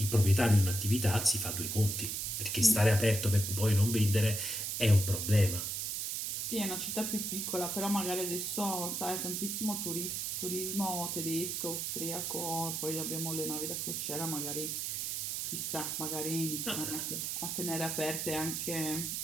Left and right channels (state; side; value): noise; right; hiss, 2 dB below the sound